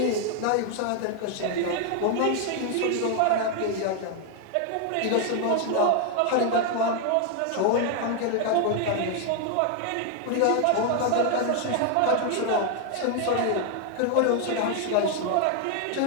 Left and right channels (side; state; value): both; different; correlation 0.00